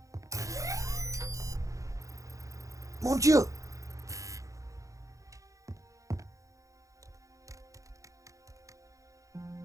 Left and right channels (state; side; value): late; left; 0.16 ms